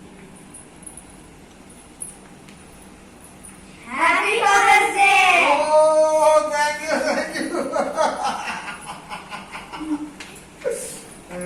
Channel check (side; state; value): both; identical; correlation 1.00